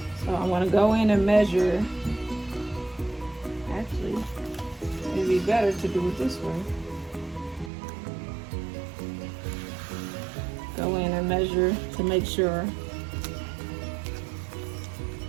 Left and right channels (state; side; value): drops out; left; at 7.7 s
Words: So I want to go in and measure. Actually, it'd be better to do it this way. Go in and measure to make sure